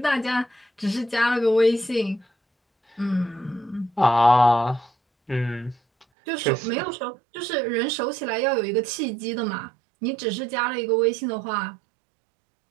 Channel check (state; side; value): drops out; left; at 6.1 s